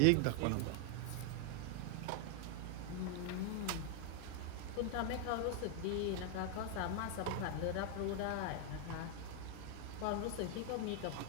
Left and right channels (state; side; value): different; both; correlation 0.00